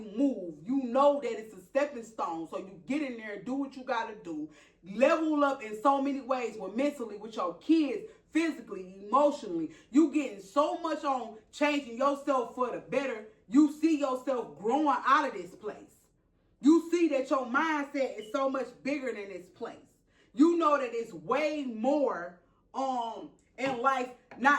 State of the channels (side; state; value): both; identical; correlation 1.00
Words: move, you know that it's a stepping stone. So you get in there, do what you got to do, level up in so many ways, with mentally, with your kids, physically, emotionally. You getting so much on changing yourself for the better. You see yourself growing out of this place. You see that your mindset is so much bigger than this place. You know that it's way more in life,